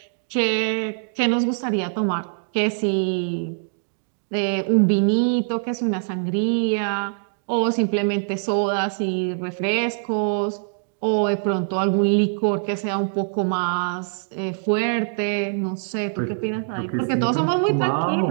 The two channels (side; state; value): left; silent; digital silence